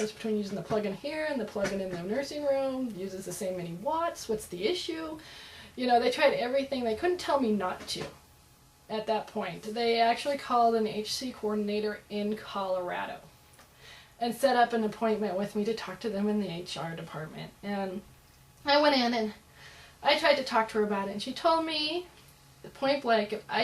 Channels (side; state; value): both; identical; correlation 1.00